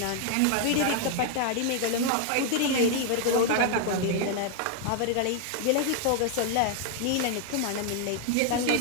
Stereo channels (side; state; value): both; different; correlation 0.00